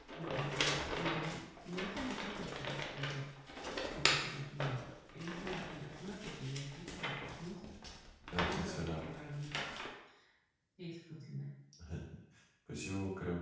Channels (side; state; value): both; identical; correlation 1.00